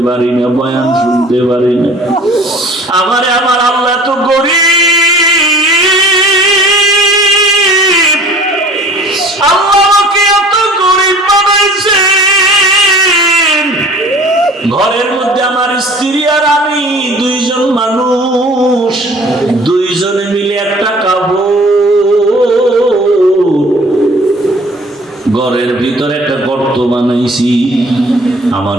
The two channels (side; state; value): both; normal; correlation 0.49